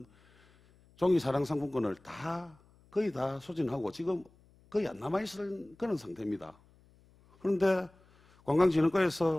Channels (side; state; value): left; noise; hum, 30 dB below the sound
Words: 종이 사랑 상품권을 거의 다 소진하고 지금 거의 안 남아있을 그런 상태입니다. 그런데